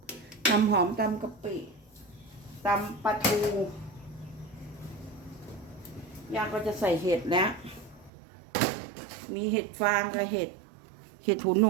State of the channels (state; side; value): drops out; left; at 8.1 s